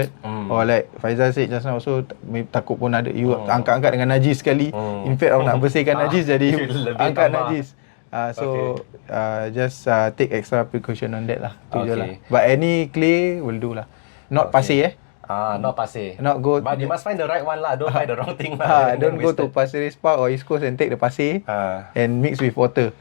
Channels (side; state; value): right; silent; digital silence